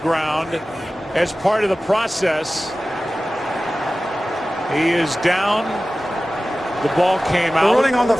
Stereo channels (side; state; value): both; normal; correlation 0.96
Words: as part of the process. He is down. The ball came out. The ruling on the